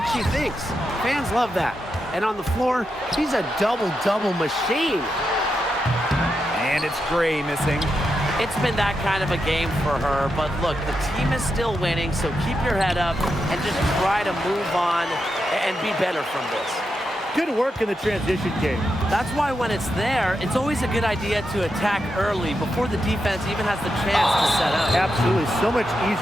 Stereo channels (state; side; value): normal; both; correlation 0.86